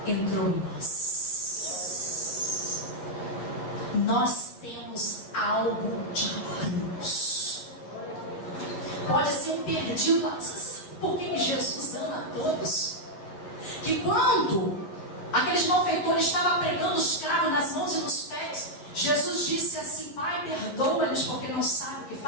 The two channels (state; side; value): late; right; 11 ms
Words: entrou em nós. Nós temos algo de Deus. Pode ser um perdido, mas por que Jesus ama a todos? Que quando aqueles malfeitores estavam pregando os cravos nas mãos e nos pés, Jesus disse assim: Pai, perdoa-lhes porque não sabem o que